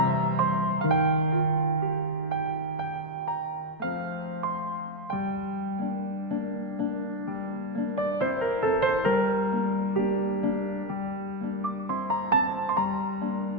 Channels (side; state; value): both; normal; correlation 0.05